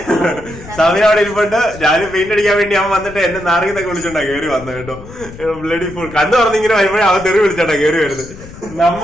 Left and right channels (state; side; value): noise; left; rumble, 16 dB below the sound